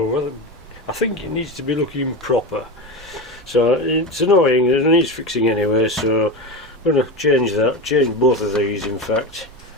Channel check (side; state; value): both; normal; correlation 0.20